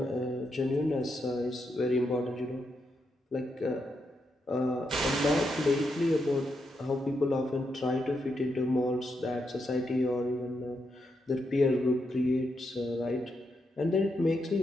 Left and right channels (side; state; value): both; normal; correlation 0.82